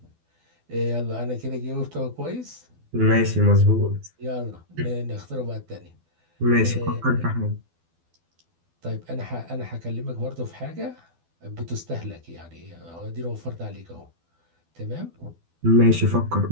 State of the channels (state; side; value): late; left; 12 ms